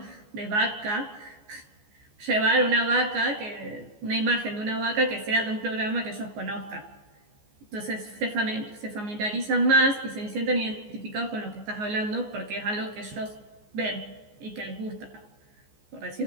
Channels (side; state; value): left; late; 14 ms